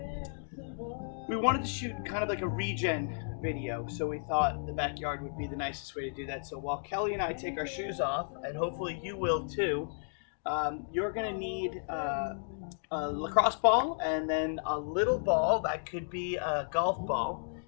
we wanted to shoot kind of like a regen video, so we thought the backyard would be the nicest way to do that. So while Kelly and I take our shoes off, and hopefully you will too, you're gonna need a lacrosse ball and then a little ball that could be a golf ball.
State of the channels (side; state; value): right; silent; digital silence